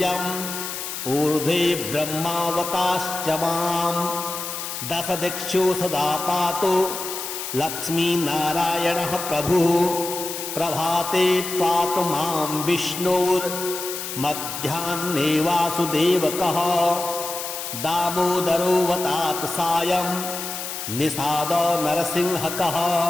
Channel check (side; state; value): left; noise; hiss, 6 dB below the sound